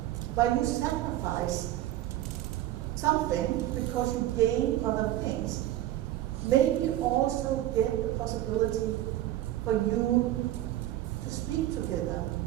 where you sacrifice something because you gain other things, maybe also get the possibility for you to speak together.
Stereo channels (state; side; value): quieter; left; 14.0 dB